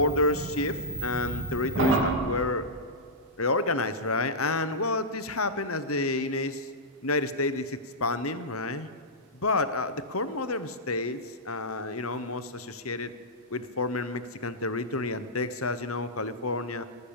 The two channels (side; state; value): both; normal; correlation -0.12